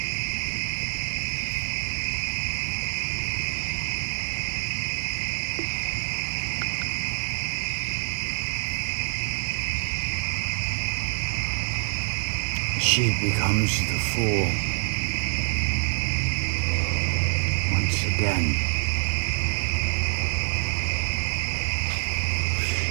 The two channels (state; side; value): silent; left; digital silence